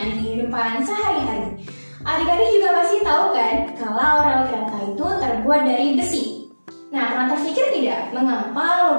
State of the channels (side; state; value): both; inverted; correlation -1.00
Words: kehidupan sehari-hari. Adik-adik juga pasti tahu kan kalau rel kereta itu terbuat dari besi. Nah, pernah terpikir tidak mengapa